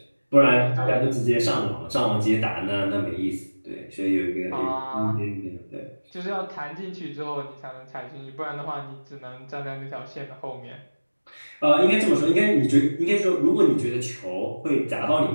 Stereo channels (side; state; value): both; inverted; correlation -1.00